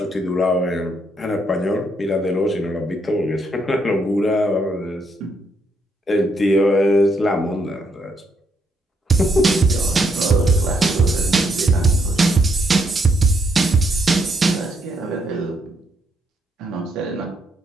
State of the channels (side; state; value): both; normal; correlation 0.75